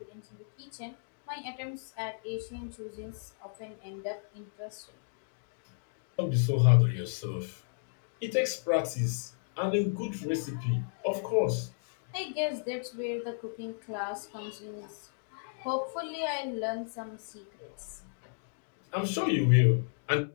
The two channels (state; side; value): silent; right; digital silence